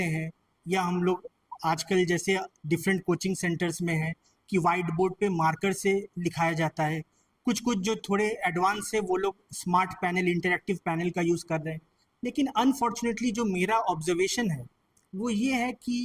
हैं, या हम लोग आजकल जैसे डिफरेंट कोचिंग सेंटर्स में है कि वाइट बोर्ड पे मार्कर से लिखाया जाता है, कुछ कुछ जो थोड़े एडवांस है वो लोग स्मार्ट पैनल, इंटरेक्टिव पैनल का यूज़ कर रहे हैं। लेकिन अनफॉर्चुनेटली जो मेरा ऑब्जर्वेशन है वो ये है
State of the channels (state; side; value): identical; both; correlation 1.00